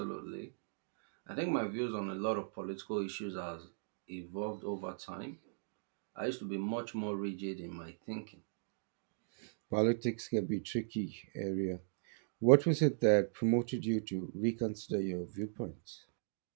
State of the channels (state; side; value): silent; left; digital silence